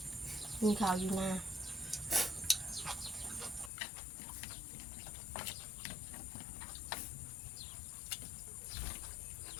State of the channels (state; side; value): drops out; right; at 3.7 s